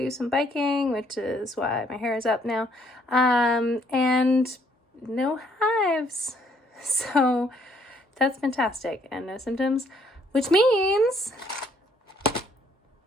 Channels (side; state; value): both; normal; correlation 0.66